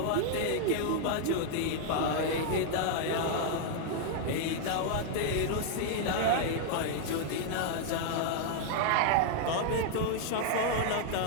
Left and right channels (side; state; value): both; different; correlation 0.00